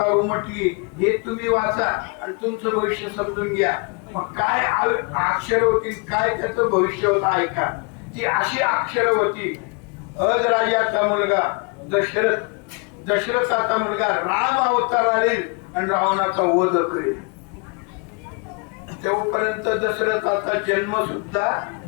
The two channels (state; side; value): quieter; right; 33.2 dB